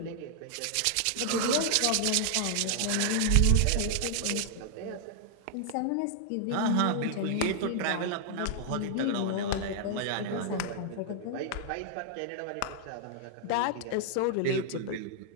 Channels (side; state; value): both; different; correlation -0.01